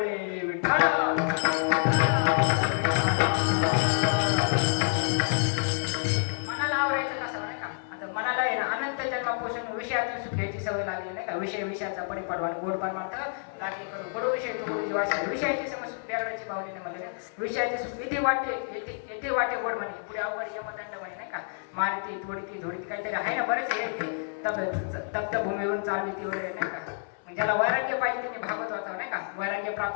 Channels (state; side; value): silent; right; 59 dB below the other